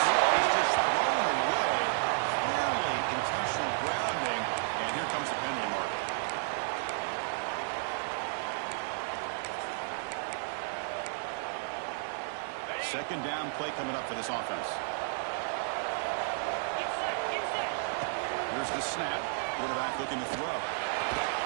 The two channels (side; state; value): left; silent; digital silence